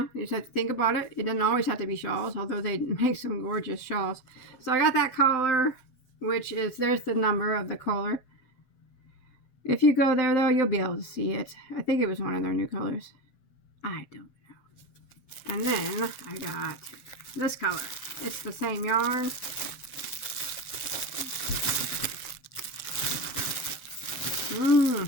you just have to think about it. It doesn't always have to be shawls, although they make some gorgeous shawls. So I got that collar, which is, there's the number of the collar. If you go there, though, you'll be able to see it. I think it was one of their new colors. I don't know. And then I got this color. It's the same yarn.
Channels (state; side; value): late; right; 7.7 ms